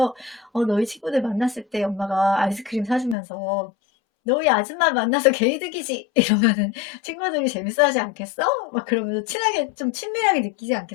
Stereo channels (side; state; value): right; drops out; at 3.2 s